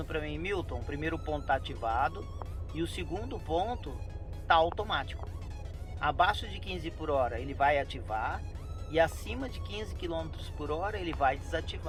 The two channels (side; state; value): both; identical; correlation 1.00